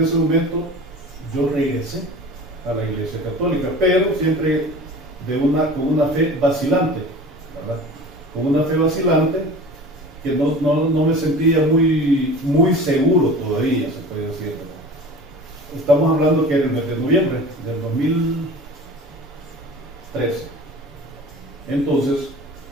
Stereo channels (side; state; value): both; normal; correlation 0.39